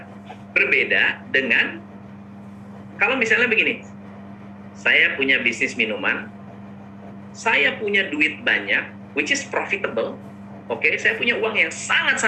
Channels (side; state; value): both; identical; correlation 1.00